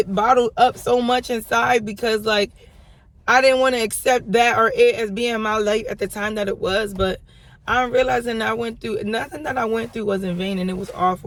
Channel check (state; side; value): identical; both; correlation 1.00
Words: bottled up so much inside because, I didn't want to accept that or it as being my life at the time that it was. But I'm realizing I went through, nothing that I went through was in vain, and it was all